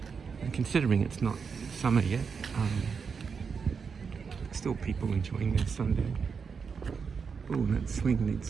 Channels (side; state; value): left; quieter; 5.8 dB